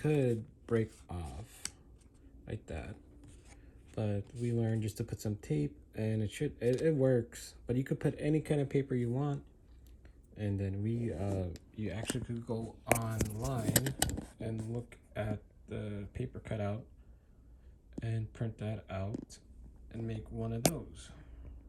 break off like that, but we learned just to put some tape, and it works. But you could put any kind of paper you want. And then you actually could go online and look at the paper cutout and print that out and make one of those.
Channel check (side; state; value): both; identical; correlation 1.00